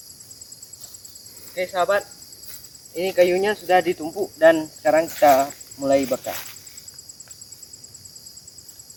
Oke sahabat, ini kayunya sudah ditumpuk dan sekarang kita mulai bakar.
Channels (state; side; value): identical; both; correlation 1.00